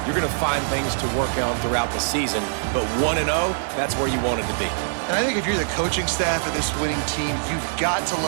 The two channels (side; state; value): left; silent; digital silence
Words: You're going to find things to work on throughout the season, but 1-0, that's where you want it to be. And I think if you're the coaching staff of this winning team, you've got to